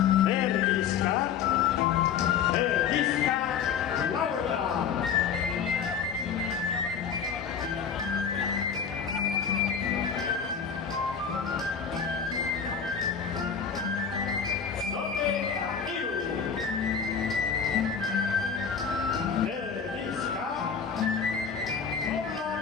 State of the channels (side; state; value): right; quieter; 6.9 dB